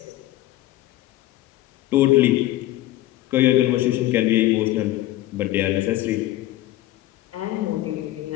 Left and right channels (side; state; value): right; quieter; 15.4 dB